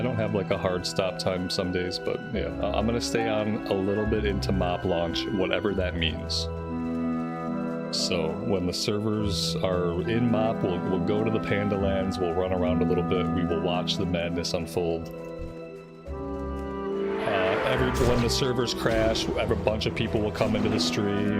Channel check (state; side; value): identical; both; correlation 1.00